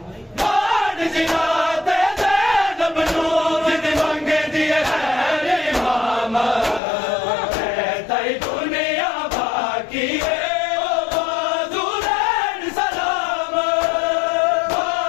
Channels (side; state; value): right; drops out; at 6.8 s